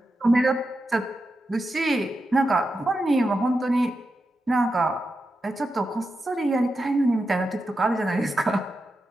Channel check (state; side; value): normal; both; correlation 0.88